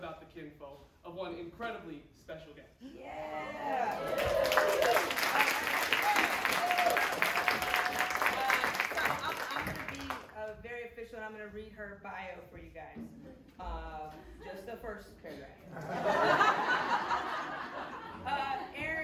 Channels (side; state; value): both; identical; correlation 1.00